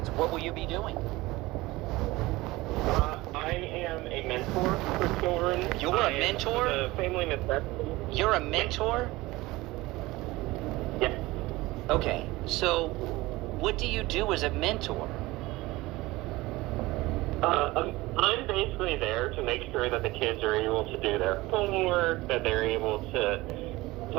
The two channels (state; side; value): quieter; left; 19.9 dB